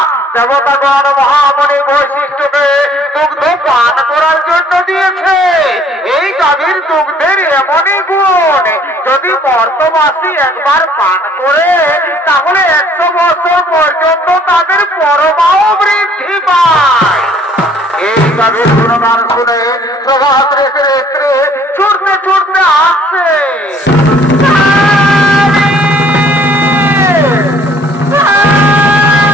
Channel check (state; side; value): normal; both; correlation 0.59